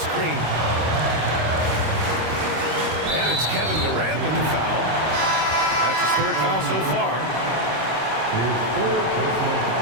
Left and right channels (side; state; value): left; late; 26 ms